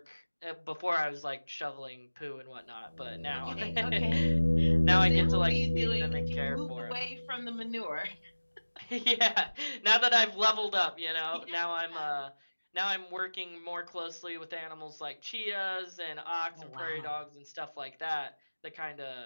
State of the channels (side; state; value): both; inverted; correlation -1.00